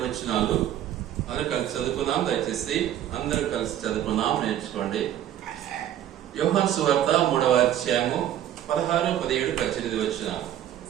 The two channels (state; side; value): quieter; left; 11.5 dB